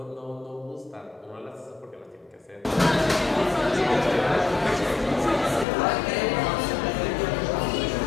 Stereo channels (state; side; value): drops out; right; at 5.7 s